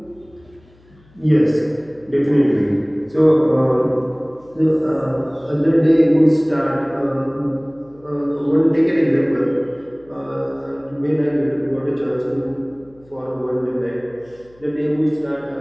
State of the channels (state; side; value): noise; left; hum, 29 dB below the sound